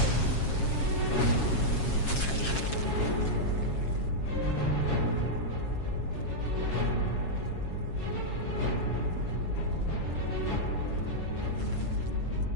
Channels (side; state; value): right; late; 7.3 ms